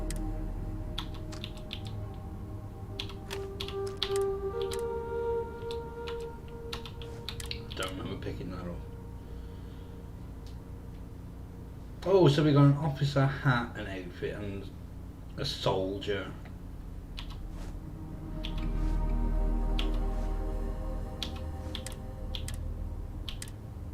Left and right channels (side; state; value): both; identical; correlation 1.00